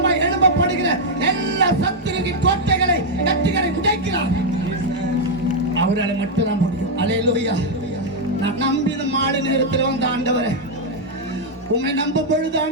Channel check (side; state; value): both; normal; correlation -0.01